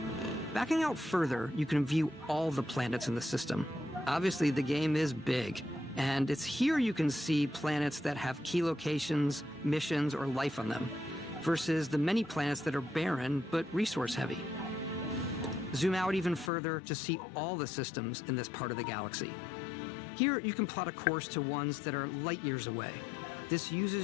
Backing out further, you can view all the planets in the system. Obviously, the game is big, and it's here you can see planets that have key locations, missions, or life on them, versus the many planets that are barren but resource-heavy. Zoom out even further to see all the systems in this part of the galaxy. Here, you can plot a course to ones that are light years away. This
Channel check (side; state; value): right; drops out; at 16.5 s